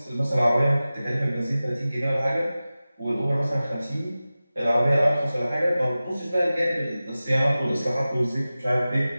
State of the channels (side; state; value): both; inverted; correlation -0.96